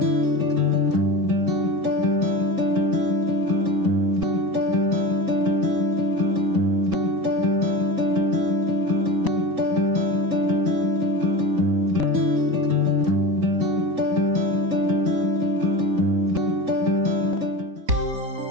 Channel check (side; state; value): left; late; 4.1 ms